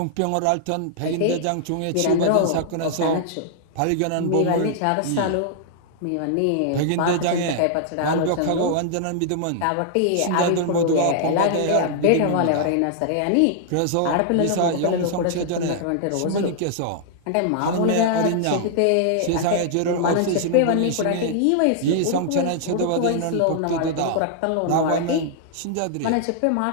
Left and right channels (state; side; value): different; both; correlation -0.01